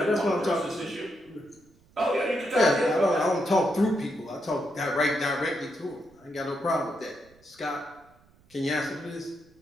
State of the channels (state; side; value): noise; right; rumble, 30 dB below the sound